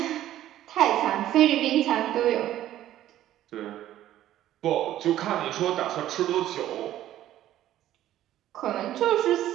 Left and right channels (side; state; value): left; quieter; 13.0 dB